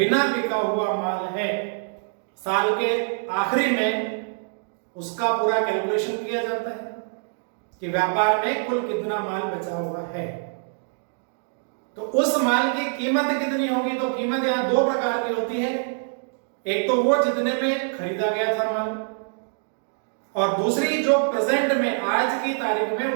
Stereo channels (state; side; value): silent; left; 62 dB below the other